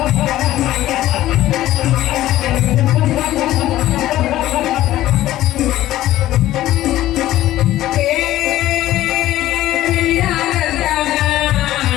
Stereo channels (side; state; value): right; quieter; 14.6 dB